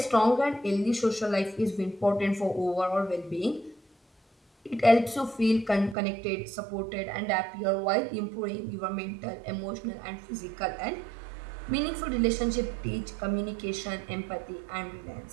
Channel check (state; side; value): drops out; left; at 6.0 s